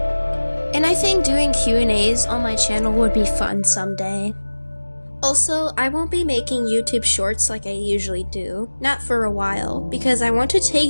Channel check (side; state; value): both; inverted; correlation -1.00